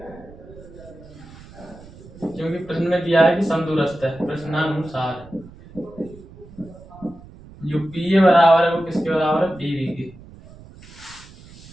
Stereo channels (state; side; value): noise; right; rumble, 20 dB below the sound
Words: क्योंकि प्रश्न में दिया है कि समदूरस्थ है, प्रश्नानुसार जो पी ए बराबर है वो किसके बराबर है, पी बी के।